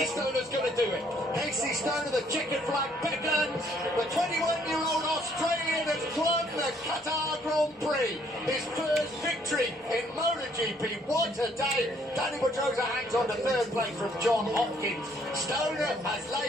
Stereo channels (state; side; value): normal; both; correlation 0.65